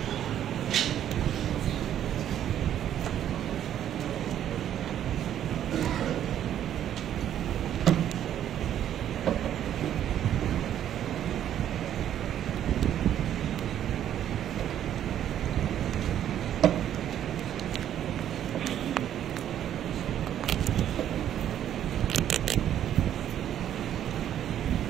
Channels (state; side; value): quieter; left; 10.7 dB